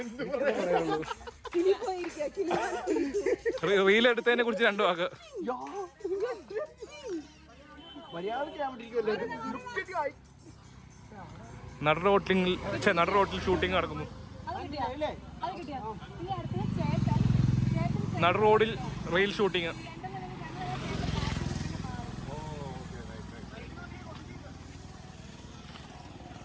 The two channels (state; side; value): identical; both; correlation 1.00